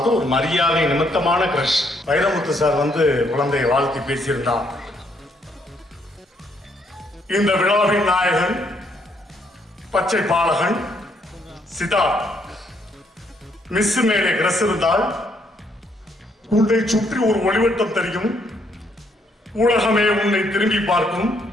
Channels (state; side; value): normal; both; correlation 0.71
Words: ஒரு மரியாதை நிமித்தமான க்ரஷ். வைரமுத்து சார் குழந்தையை வாழ்த்தி பேசியிருந்தார். இந்த விழாவின் நாயகன் பச்சை பாலகன் சித்தார்த். மிஸ் மேலே க்ரஷ் இருந்தால் உன்னை சுற்றி ஒரு ஒளிவட்டம் தெரியும், உலகமே உன்னை திரும்பி பார்க்கும்,